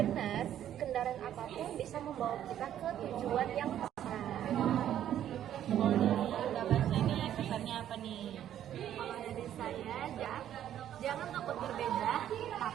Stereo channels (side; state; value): left; quieter; 11.0 dB